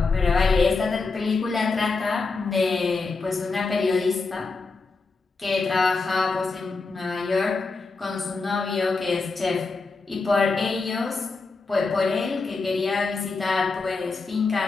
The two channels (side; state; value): right; quieter; 4.1 dB